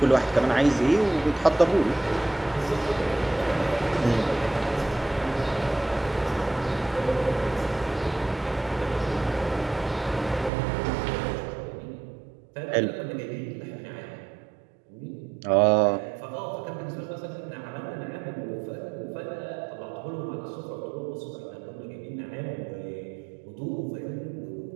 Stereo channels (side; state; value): left; drops out; at 10.5 s